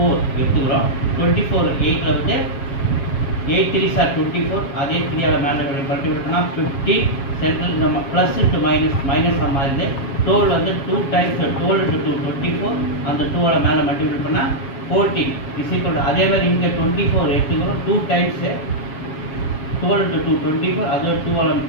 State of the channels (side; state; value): right; late; 7.3 ms